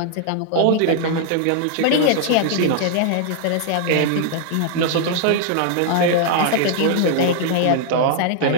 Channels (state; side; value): different; both; correlation -0.01